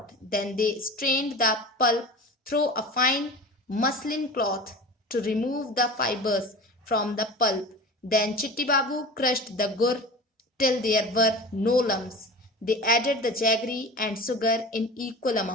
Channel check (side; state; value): both; normal; correlation 0.34